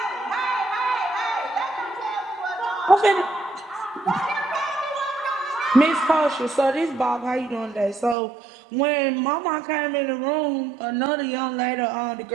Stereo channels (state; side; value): drops out; left; at 8.2 s